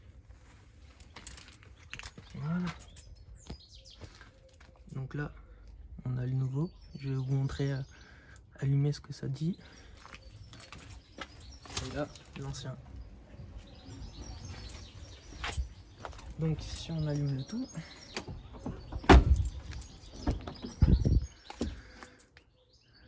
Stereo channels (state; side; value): identical; both; correlation 1.00